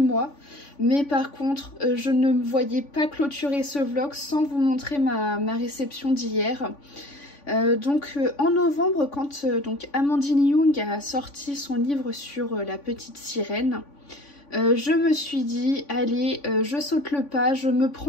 Mais par contre, je ne me voyais pas clôturer ce vlog sans vous montrer ma réception d'hier. En novembre, quand donc Amandine Young a sorti son livre sur la petite sirène, je me suis dit, allez, je saute le pas, je me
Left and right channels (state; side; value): late; right; 3.5 ms